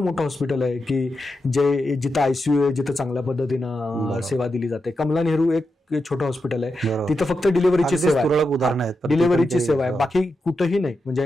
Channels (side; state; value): both; normal; correlation 0.87